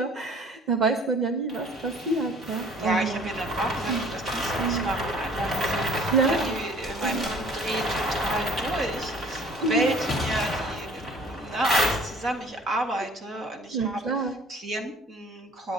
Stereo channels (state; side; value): normal; both; correlation 0.52